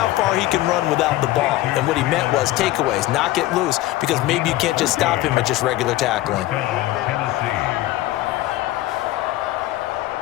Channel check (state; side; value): quieter; right; 16.2 dB